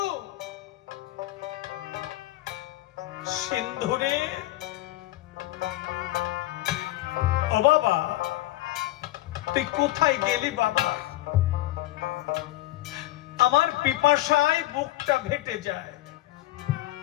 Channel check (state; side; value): quieter; right; 16.7 dB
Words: সিন্ধুরে, ও বাবা, তুই কোথায় গেলি বাবা? আমার পিপাসায় বুকটা ফেটে যায়,